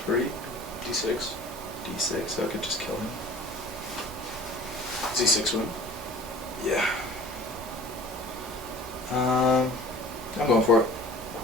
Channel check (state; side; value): normal; both; correlation 0.44